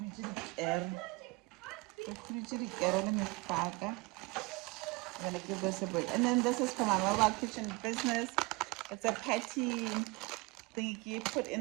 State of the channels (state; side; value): quieter; left; 25.5 dB